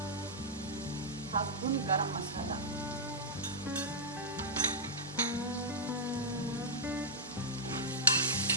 1/2 స్పూన్ గరం మసాలా,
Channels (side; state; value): right; noise; hum, 24 dB below the sound